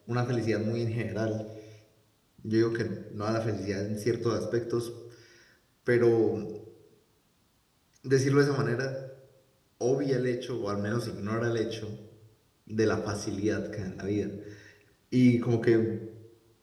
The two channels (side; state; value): both; identical; correlation 1.00